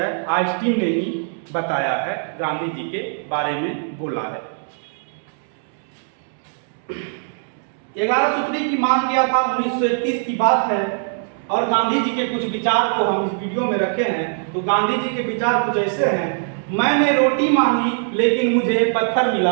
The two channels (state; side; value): silent; left; 65 dB below the other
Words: आइंस्टीन ने ही बताया है, गांधी जी के बारे में बोला है। 11 सूत्री की मांग किया था, 1931 की बात है, और गांधी जी के कुछ विचार को हम इस वीडियो में रखे हैं। तो गांधी जी के विचार कुछ ऐसे हैं, मैंने रोटी मांगी लेकिन मुझे पत्थर